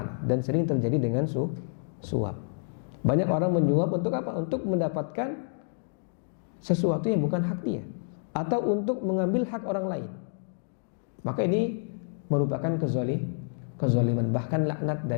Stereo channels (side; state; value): right; silent; digital silence